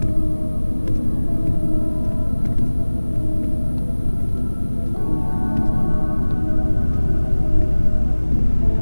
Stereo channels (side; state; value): both; inverted; correlation -1.00